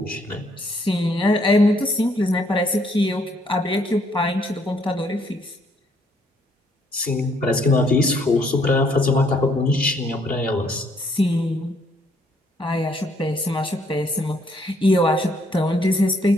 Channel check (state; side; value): normal; both; correlation 0.68